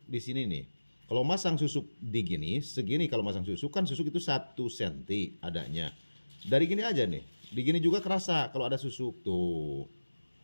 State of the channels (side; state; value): both; inverted; correlation -1.00